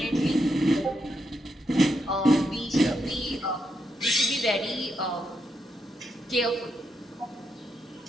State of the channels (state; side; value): normal; both; correlation 0.82